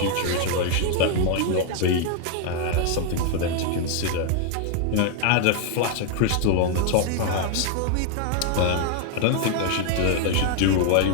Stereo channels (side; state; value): both; different; correlation 0.01